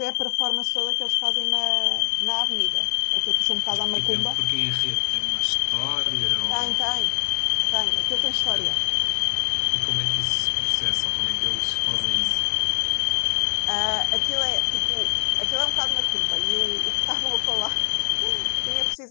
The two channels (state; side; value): silent; right; digital silence